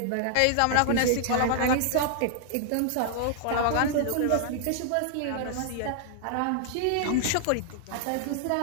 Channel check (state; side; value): different; both; correlation -0.01